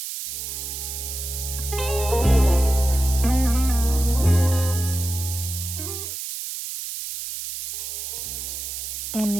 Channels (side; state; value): right; noise; hiss, 6 dB below the sound